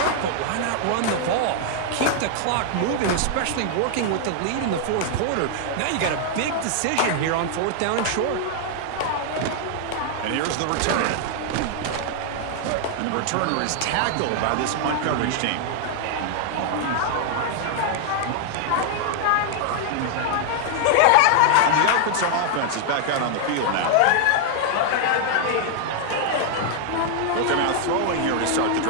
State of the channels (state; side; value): different; both; correlation 0.00